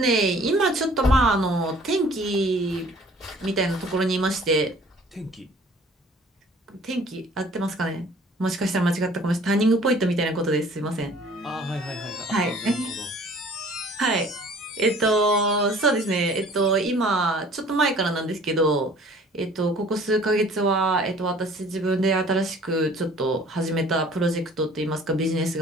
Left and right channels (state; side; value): normal; both; correlation 0.52